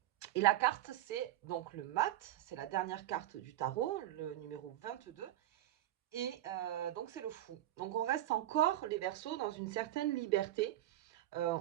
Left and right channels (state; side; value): quieter; left; 13.9 dB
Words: et la carte c'est donc le mat, c'est la dernière carte du tarot, le numéro 22. Et donc c'est le fou. Donc on reste encore les versos dans une certaine liberté.